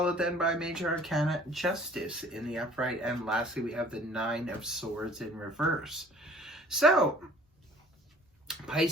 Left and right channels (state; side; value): normal; both; correlation 0.52